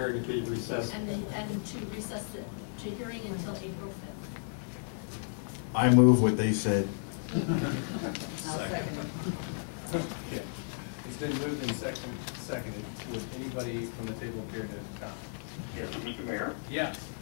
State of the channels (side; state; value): right; silent; digital silence